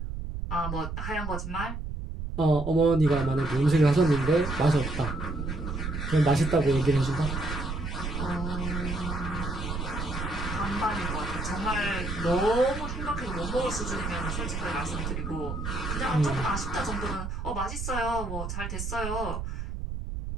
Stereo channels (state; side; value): noise; right; rumble, 5 dB below the sound